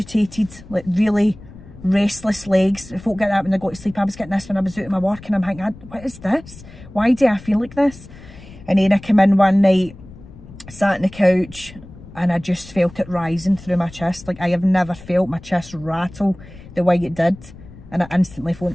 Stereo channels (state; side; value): noise; left; rumble, 18 dB below the sound